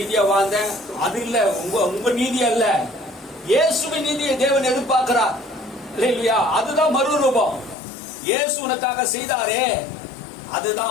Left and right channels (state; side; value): drops out; right; at 7.8 s